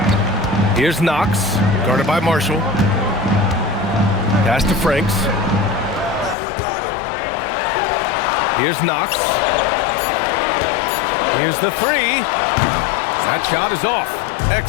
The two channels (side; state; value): right; drops out; at 6.4 s